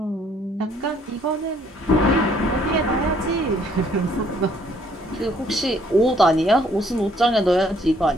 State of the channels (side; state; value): both; normal; correlation 0.64